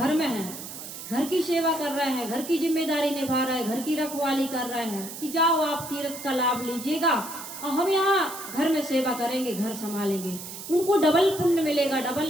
में है, घर की सेवा कर रहे हैं, घर की जिम्मेदारी निभा रहे हैं, घर की रखवाली कर रहे हैं कि जाओ आप तीर्थ का लाभ लीजिएगा और हम यहाँ घर में सेवा करेंगे, घर संभालेंगे। उनको डबल पुण्य मिलेगा,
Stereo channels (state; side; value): noise; right; hiss, 11 dB below the sound